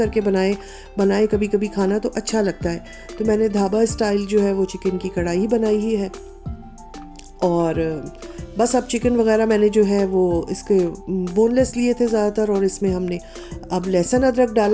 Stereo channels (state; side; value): identical; both; correlation 1.00